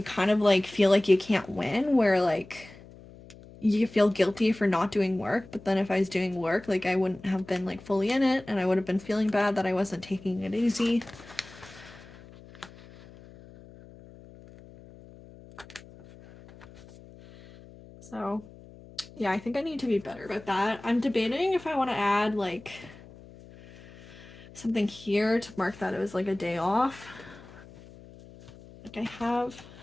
kind of like feel like you can't win, where like you feel guilty for not doing work, but then if I was doing work, like I wouldn't have been like fully in it and I would have been feeling bad that I wasn't taking it easy. So yeah, I think I need to be better about that. I'm debating if I want to add like something here to mark that it was like a day off. Like I have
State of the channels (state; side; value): noise; left; hum, 20 dB below the sound